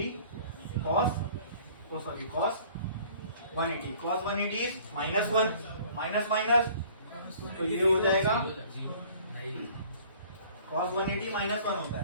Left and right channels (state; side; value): inverted; both; correlation -0.52